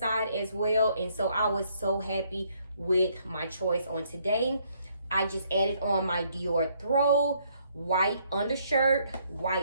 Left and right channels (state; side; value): inverted; both; correlation -0.69